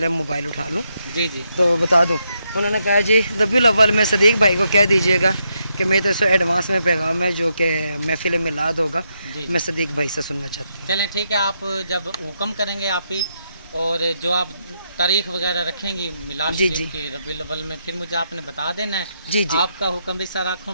मोबाइल उठा लूँ। जी जी, तो बता दूँ। उन्होंने कहा जी रबीउल अव्वल में सदीक भाई को कह दीजिएगा कि मेरी तरफ से एडवांस में पैगाम है, जो कि महफिल मिलाद होगा, मैं सदीक भाई से सुनना चाहती हूँ। चलें ठीक है, आप जब हुक्म करेंगे आप ही, और जो आप तारीख वगैरह रखेंगी मिलाद शरीफ की रबीउल अव्वल में, फिर मुझे आपने बता देना है। जी जी, आपका हुक्म भी सर आँखों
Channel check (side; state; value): both; inverted; correlation -0.81